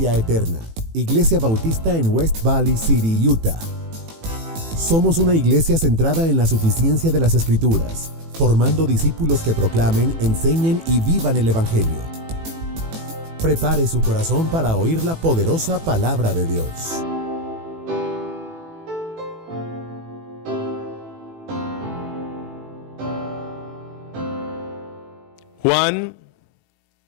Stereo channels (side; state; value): left; late; 18 ms